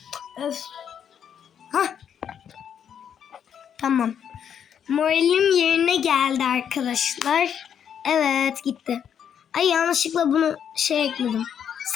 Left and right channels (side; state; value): right; quieter; 8.5 dB